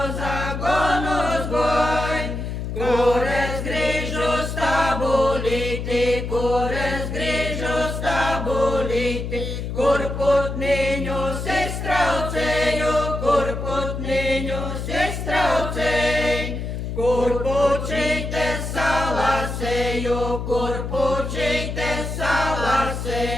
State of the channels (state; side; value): noise; left; hum, 5 dB below the sound